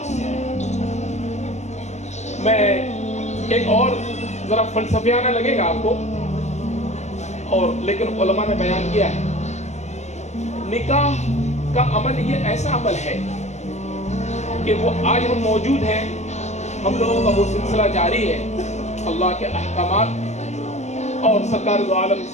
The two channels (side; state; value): right; late; 0.33 ms